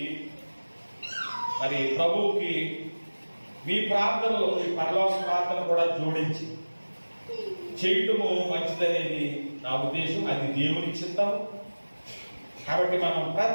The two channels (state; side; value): inverted; both; correlation -1.00